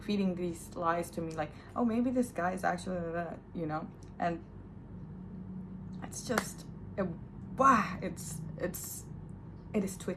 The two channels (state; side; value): identical; both; correlation 1.00